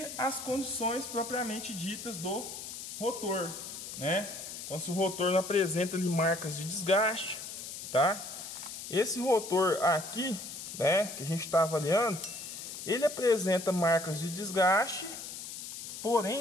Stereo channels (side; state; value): left; noise; hiss, 9 dB below the sound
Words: as condições propriamente ditas do rotor, né? Então, se o rotor não apresenta ali marcas de desgaste, tá? Esse rotor aqui, né, que a gente está avaliando, ele apresenta marcas de desgaste,